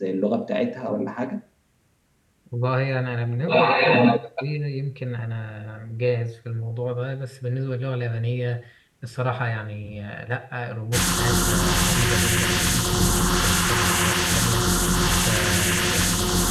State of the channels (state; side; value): identical; both; correlation 1.00